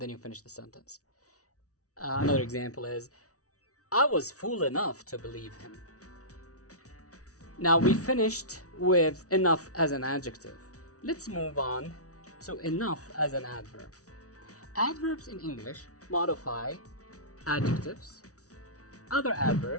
then you finish the sentence. Another example is, I was fool enough to believe him. Now we finished with enough as an adjective. Let's move on to enough as an adverb. Adverbs in English modify adjectives, other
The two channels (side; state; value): right; late; 0.66 ms